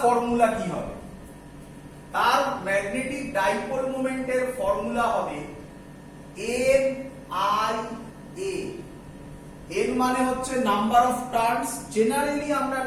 ফর্মুলা কি হবে তার ম্যাগনেটিক ডাইপোল মোমেন্টের ফর্মুলা হবে n i a n মানে হচ্ছে নাম্বার অফ টার্নস জেনারেলি আমরা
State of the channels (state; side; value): identical; both; correlation 1.00